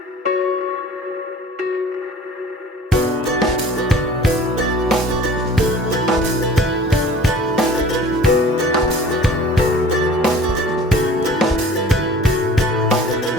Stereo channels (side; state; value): both; normal; correlation 0.46